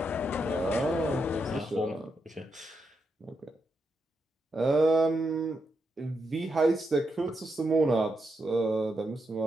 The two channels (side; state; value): both; normal; correlation 0.83